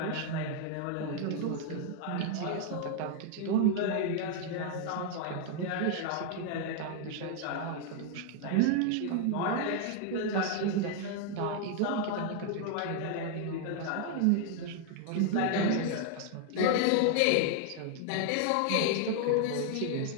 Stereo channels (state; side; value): different; both; correlation 0.00